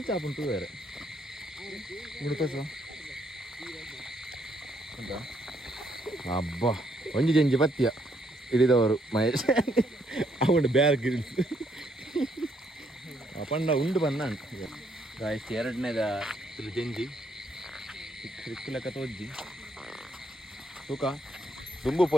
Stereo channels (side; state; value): both; normal; correlation 0.72